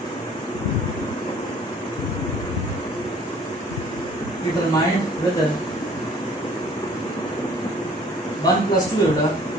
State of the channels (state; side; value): normal; both; correlation 0.54